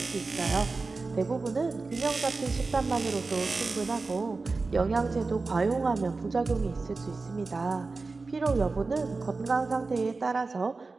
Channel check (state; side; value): quieter; left; 3.9 dB